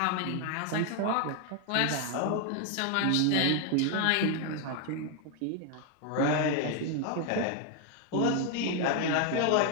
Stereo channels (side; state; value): both; different; correlation 0.01